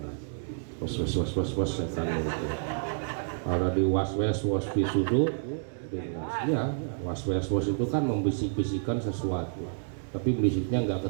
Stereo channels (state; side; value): silent; left; digital silence